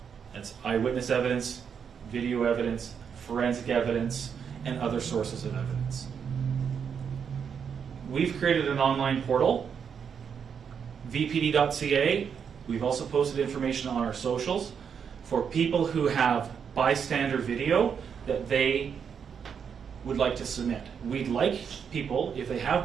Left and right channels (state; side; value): quieter; left; 7.1 dB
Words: That's eyewitness evidence, video evidence, forensic evidence, and other sources of evidence. We've created an online portal, vpd.ca. We've also posted information on our socials for people who have bystander video that they would like to submit. We'd like people, if they